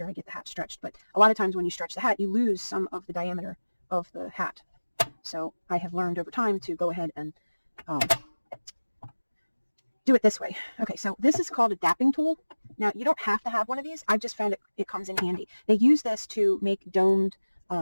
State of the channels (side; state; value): both; inverted; correlation -1.00